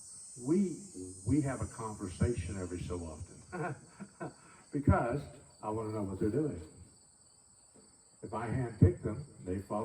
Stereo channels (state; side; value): identical; both; correlation 1.00